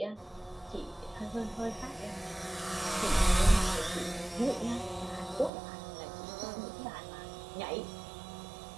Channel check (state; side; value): drops out; left; at 5.5 s